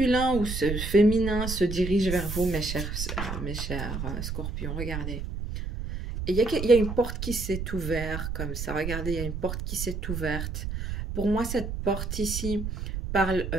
ou ce féminin se dirige vers vous, mes chers scorpions. Regardez. Et il y a une porte qui s'est ouverte comme ça. Regardez, il y a une porte qui s'est ouverte. Pour moi, cette porte ici parle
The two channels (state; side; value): noise; right; rumble, 5 dB below the sound